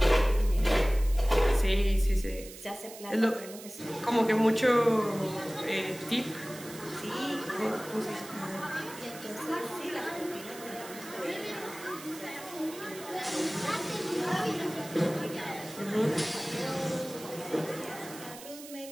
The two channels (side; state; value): right; noise; hiss, 15 dB below the sound